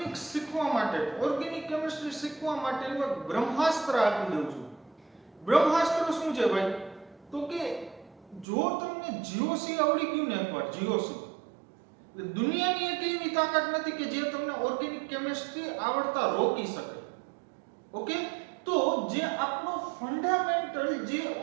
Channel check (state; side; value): drops out; left; at 8.5 s